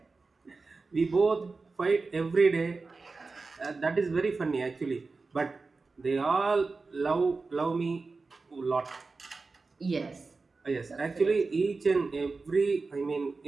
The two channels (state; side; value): quieter; left; 4.0 dB